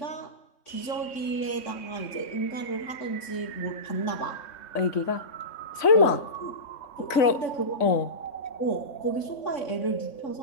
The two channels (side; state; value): right; late; 3.5 ms